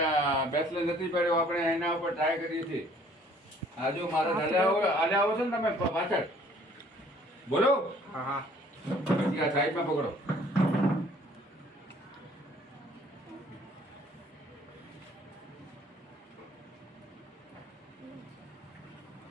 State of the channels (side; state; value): both; normal; correlation 0.57